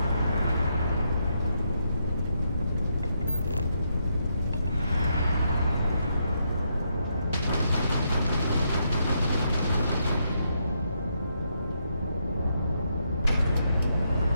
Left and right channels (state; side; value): inverted; both; correlation -0.79